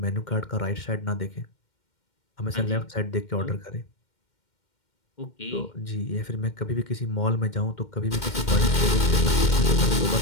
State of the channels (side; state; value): right; late; 2.1 ms